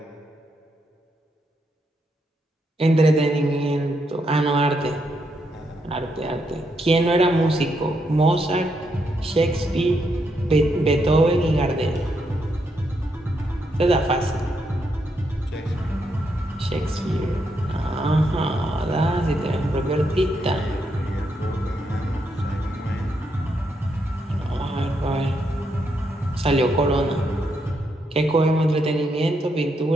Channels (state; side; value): normal; both; correlation 0.79